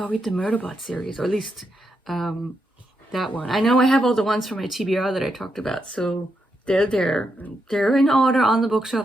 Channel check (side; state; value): both; normal; correlation 0.82